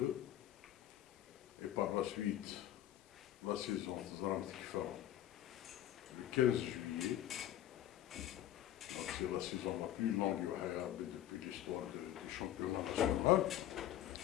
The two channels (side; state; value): right; quieter; 12.6 dB